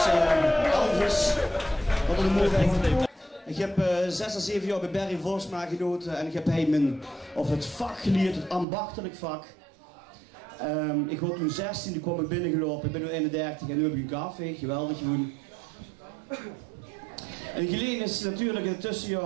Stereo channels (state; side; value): drops out; left; at 8.7 s